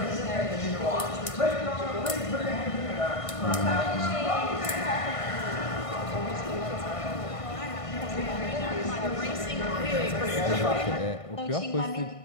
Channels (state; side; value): late; right; 1.5 ms